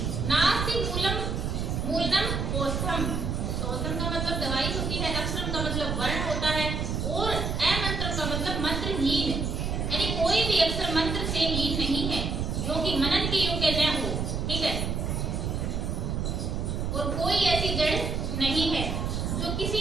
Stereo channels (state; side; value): noise; right; rumble, 1 dB below the sound